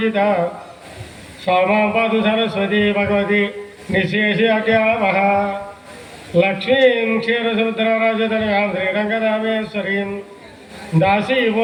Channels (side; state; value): both; identical; correlation 1.00